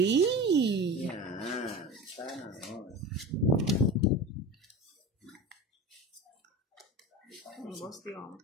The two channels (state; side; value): normal; both; correlation 0.31